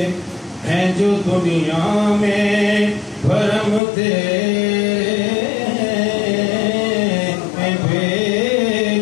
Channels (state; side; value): drops out; right; at 3.8 s